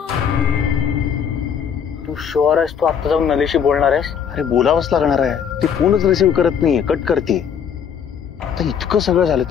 शुअर आहेस तू आता जाऊन नलीशी बोलणार आहेस? अरे बोलावंच लागणार आहे. ती फोनच रिसीव्ह करत नाहीये, कट करते. आता इतकं सगळं झालं,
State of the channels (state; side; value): quieter; right; 7.7 dB